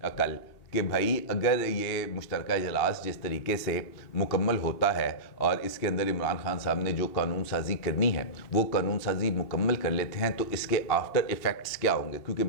کل کہ بھائی اگر یہ مشترکہ اجلاس جس طریقے سے مکمل ہوتا ہے اور اس کے اندر عمران خان صاحب نے جو قانون سازی کرنی ہے وہ قانون سازی مکمل کر لیتے ہیں تو اس کے آفٹر ایفیکٹس کیا ہوں گے, کیونکہ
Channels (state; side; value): late; right; 2.8 ms